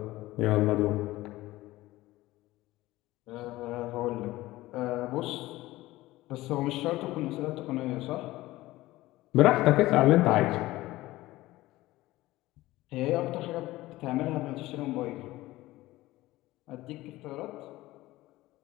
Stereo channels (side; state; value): right; quieter; 17.7 dB